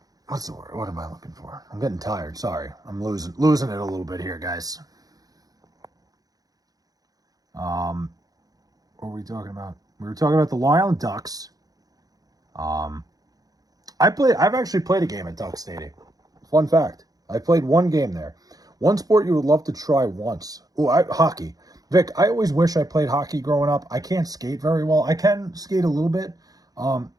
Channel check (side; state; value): left; late; 0.18 ms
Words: what's the word? What am I looking for? I'm getting tired. Sorry. I'm losing it a little bit here, guys. What were we talking about? We were talking about the Long Island Ducks. I've actually played a game at Duck Stadium. Fun fact. I played one game there. One sport you would love to try once. Hockey. Vic, I always wish I played hockey growing up. I can't skate very well. I can skate a little bit.